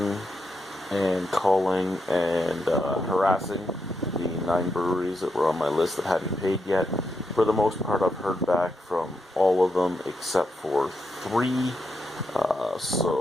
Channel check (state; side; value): normal; both; correlation 0.83